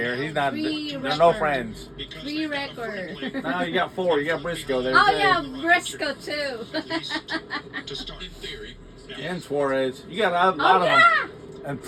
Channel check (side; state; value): both; identical; correlation 1.00